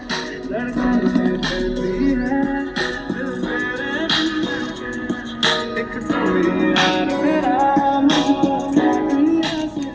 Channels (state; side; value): identical; both; correlation 1.00